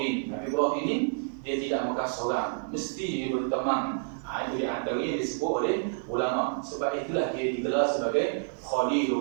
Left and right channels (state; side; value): silent; left; digital silence